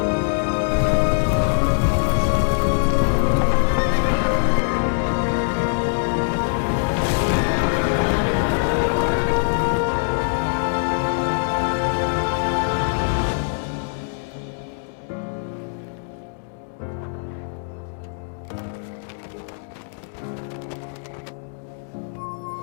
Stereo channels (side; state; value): right; silent; digital silence